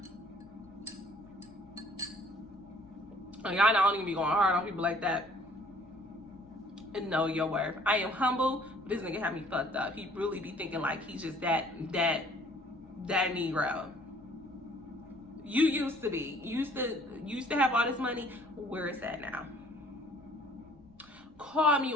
Y'all don't even be going hard on people like that. And know your worth. I am humble, but this nigga had me fucked up. He really be thinking like he's just that Negro. You used to be. Used to have all this money. Where is that now? Call me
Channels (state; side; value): noise; right; rumble, 28 dB below the sound